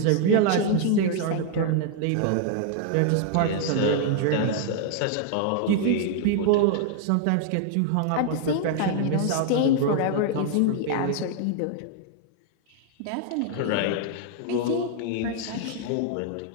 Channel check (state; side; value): different; both; correlation 0.00